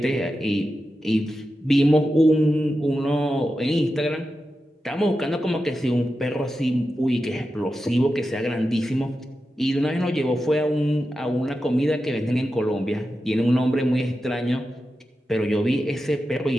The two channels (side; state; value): both; normal; correlation 0.91